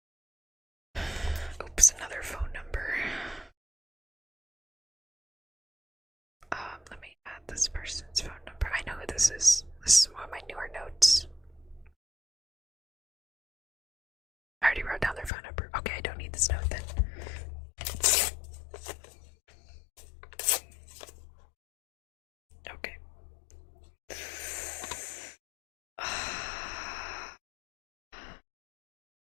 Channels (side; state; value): right; drops out; at 15.3 s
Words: Oops, another phone number. Let me add this person's phone number. I know who this is. This is one of my newer notes. I already wrote down their phone number. Okay, I don't need this note then. Okay.